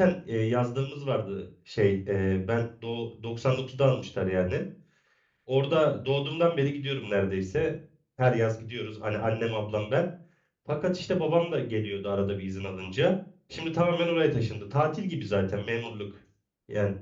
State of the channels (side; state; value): both; identical; correlation 1.00